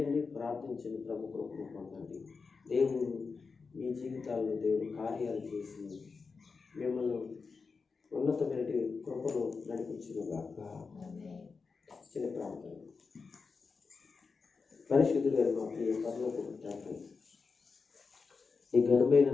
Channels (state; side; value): quieter; right; 4.8 dB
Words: ప్రార్థించండి, ప్రభు కృపను పొందండి. దేవుడు మీ జీవితాల్లో దేవుడు కార్యాలు చేసి మిమ్మల్ని ఉన్నతమైన కృపను నడిపించుగాక. చిన్న ప్రార్థన. పరిశుద్ధుడైన మా ప్రియ పరలోకపు తండ్రి, ఈ ఘనమైన